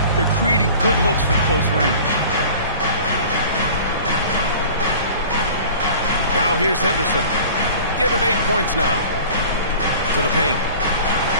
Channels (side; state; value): both; inverted; correlation -0.43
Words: they're creating good looks from close range. Now here's Henderson. Give him 8 points now. To the paint.